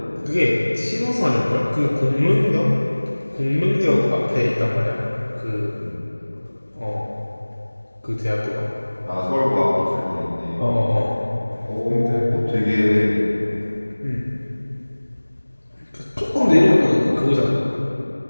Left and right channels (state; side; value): inverted; both; correlation -1.00